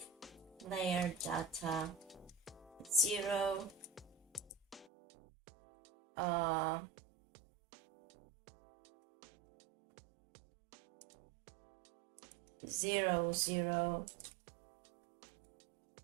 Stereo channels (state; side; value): drops out; left; at 4.9 s